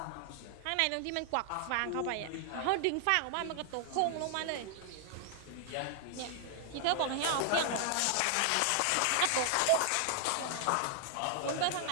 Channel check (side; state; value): both; different; correlation 0.00